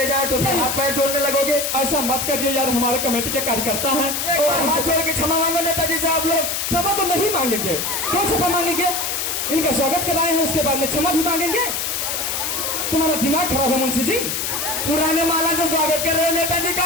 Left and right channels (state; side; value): noise; left; hiss, 1 dB below the sound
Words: जाए तो फिर नहीं। हाथ पैर जोड़ने लगोगे। ऐसा मत करिए यार, हमारे कमेटी के कार्यकर्ता हैं एक बार हाथ जोड़ के क्षमा मांगो नेताजी से आप लोग। क्षमा तो नहीं मांगेंगे, क्यों क्षमा मांगेंगे? इनका स्वागत कराए हैं, उसके बाद में क्षमा भी मांगेंगे? तुम्हारा दिमाग खराब है मुंशी जी। पुराने माला से स्वागत कर रहे हो नेताजी का,